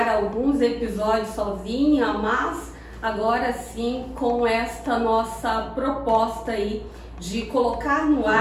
alguns episódios sozinha, mas agora sim com esta nossa proposta aí de colocar no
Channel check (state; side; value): identical; both; correlation 1.00